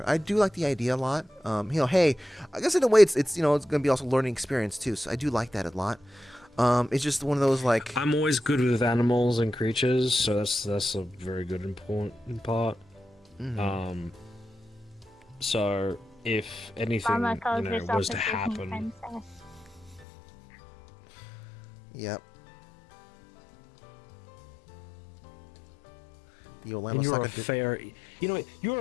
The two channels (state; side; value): drops out; right; at 20.1 s